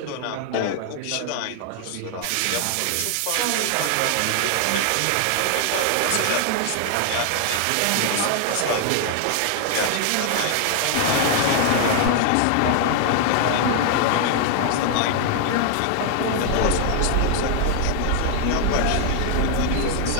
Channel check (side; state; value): both; different; correlation 0.00